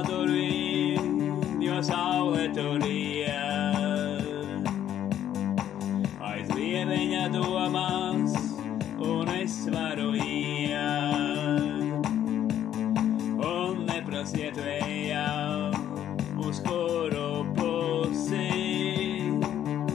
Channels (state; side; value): quieter; right; 10.8 dB